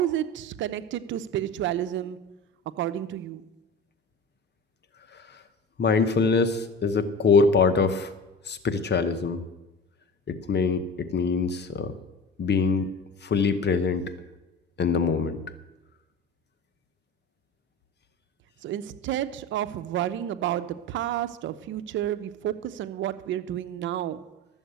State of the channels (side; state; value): both; normal; correlation 0.32